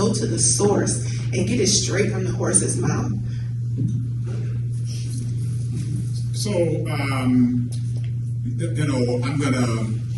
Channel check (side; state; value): both; identical; correlation 1.00